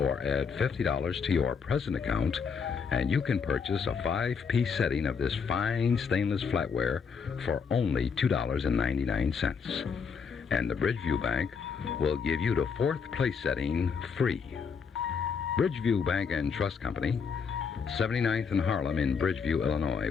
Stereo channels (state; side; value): quieter; right; 6.0 dB